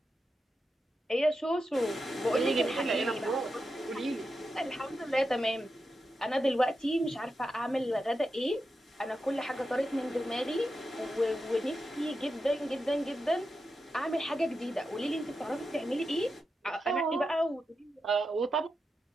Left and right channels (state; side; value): normal; both; correlation 0.89